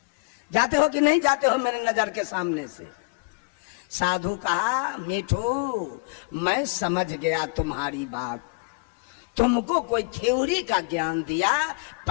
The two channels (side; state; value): right; quieter; 31.1 dB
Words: जाते हो कि नहीं जाते हो मेरे नजर के सामने से? साधु कहा मीठू मैं समझ गया तुम्हारी बात, तुमको कोई थ्योरी का ज्ञान दिया,